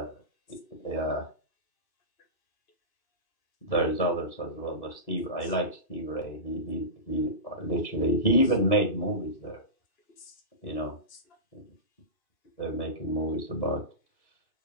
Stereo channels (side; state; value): right; late; 2.6 ms